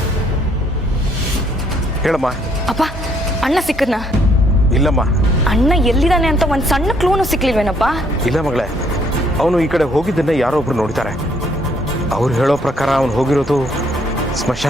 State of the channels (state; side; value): normal; both; correlation 0.67